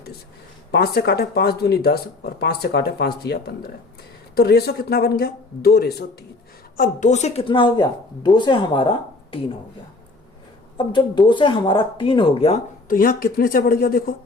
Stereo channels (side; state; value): right; quieter; 3.3 dB